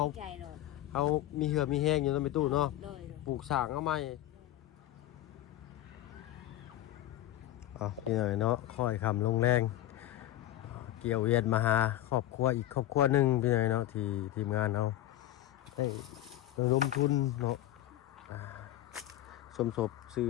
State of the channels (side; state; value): right; quieter; 13.6 dB